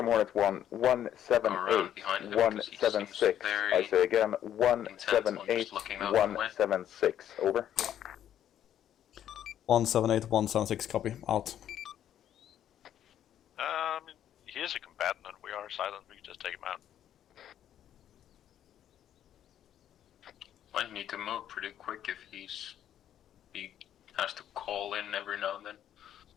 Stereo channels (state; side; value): quieter; right; 10.6 dB